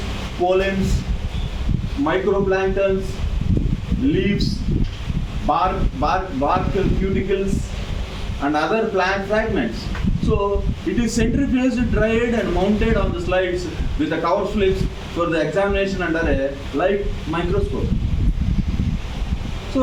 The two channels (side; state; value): both; identical; correlation 1.00